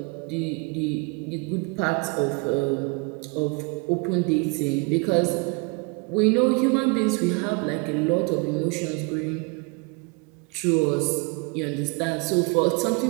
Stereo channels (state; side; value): quieter; left; 30.5 dB